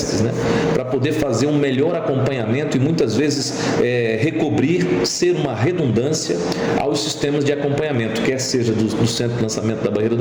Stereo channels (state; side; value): identical; both; correlation 1.00